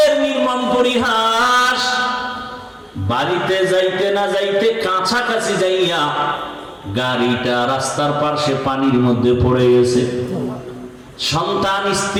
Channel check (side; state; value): both; identical; correlation 1.00